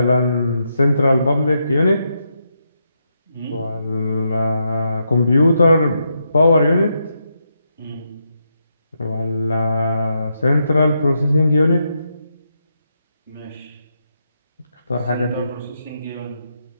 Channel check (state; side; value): inverted; both; correlation -0.82